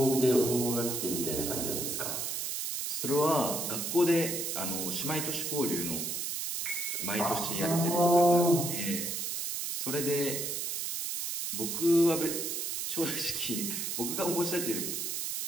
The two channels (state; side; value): noise; right; hiss, 2 dB below the sound